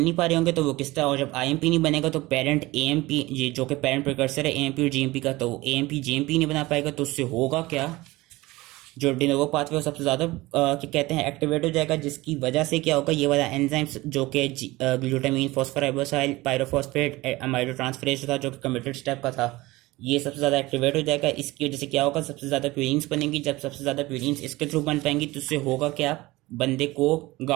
नहीं पा रहे होंगे तो वो किस तरह, और जब आईएमपी नहीं बनेगा तो पेरेंट एएमपी जो कि पेरेंट प्रिकर्सर है एएमपी और जीएमपी का, तो एएमपी जीएमपी नहीं बना पाएगा। तो उससे होगा क्या, जो डिनोवो पाथवे सबसे ज़्यादा क्या कहते हैं एक्टिवेट हो जाएगा, जिसकी वजह से क्या होगा, ये वाला एंजाइम्स जो कि glutamine phosphoribosyl pyrophosphate amido transferase था जो कि कमिटेड स्टेप का था, ये सबसे ज़्यादा एक्टिवेट हो जाएगा। इसकी वजह से क्या होगा, सबसे ज़्यादा प्यूरीन्स बनेंगी। जब सबसे ज़्यादा प्यूरीन्स इसके थ्रू बन पाएंगी तो उससे होगा क्या, बंदे को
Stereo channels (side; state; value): left; quieter; 20.1 dB